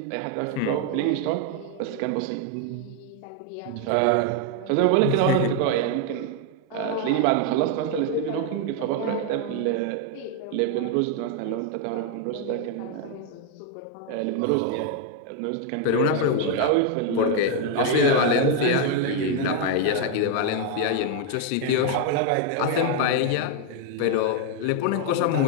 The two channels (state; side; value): different; both; correlation 0.01